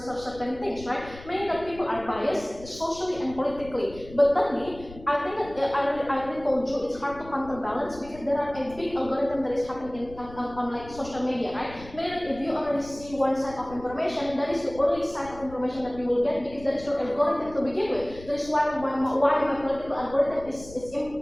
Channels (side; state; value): left; noise; rumble, 17 dB below the sound